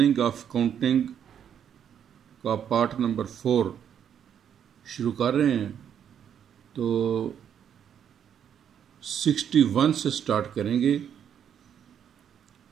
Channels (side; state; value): left; quieter; 8.8 dB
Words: ऑफ काउंटिंग का पार्ट नंबर 4 शुरू कर रहे हैं। तो 61 से स्टार्ट करेंगे।